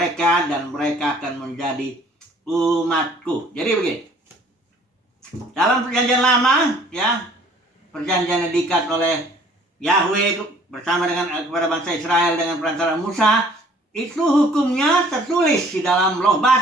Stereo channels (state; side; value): normal; both; correlation 0.56